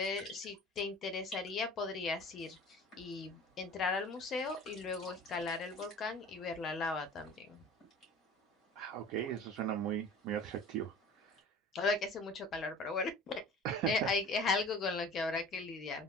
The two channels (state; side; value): normal; both; correlation 0.42